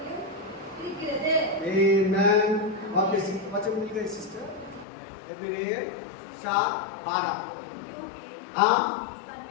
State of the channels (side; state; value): right; drops out; at 4.9 s